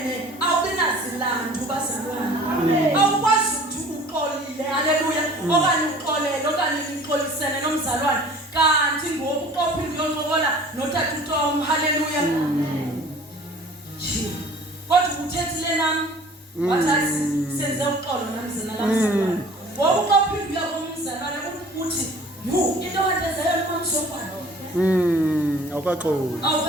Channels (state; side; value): normal; both; correlation 0.48